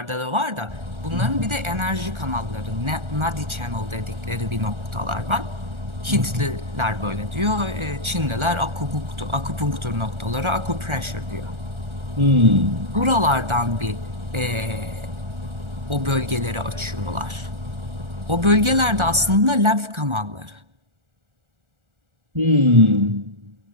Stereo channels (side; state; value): left; late; 1.4 ms